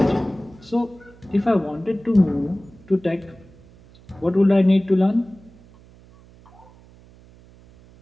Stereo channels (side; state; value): right; noise; hum, 25 dB below the sound